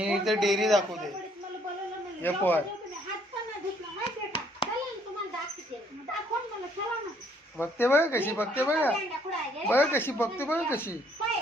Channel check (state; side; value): normal; both; correlation 0.66